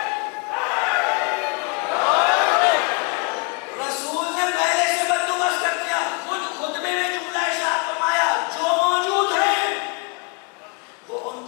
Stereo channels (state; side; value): quieter; right; 33.0 dB